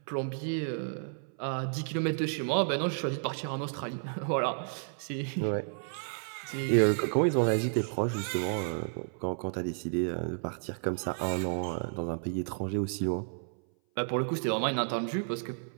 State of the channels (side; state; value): left; silent; 57 dB below the other